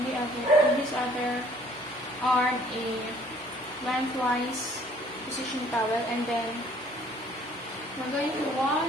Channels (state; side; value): normal; both; correlation 0.58